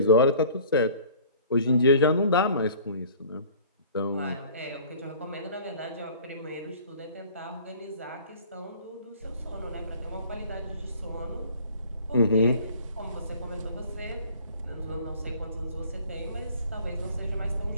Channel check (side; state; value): both; inverted; correlation -0.49